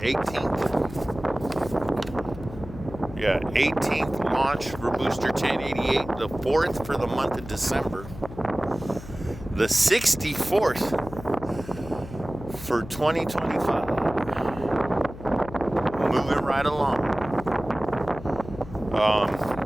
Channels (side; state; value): left; noise; hum, 14 dB below the sound